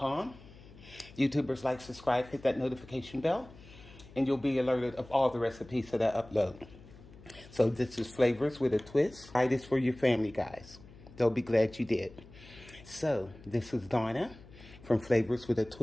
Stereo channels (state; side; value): noise; left; hum, 20 dB below the sound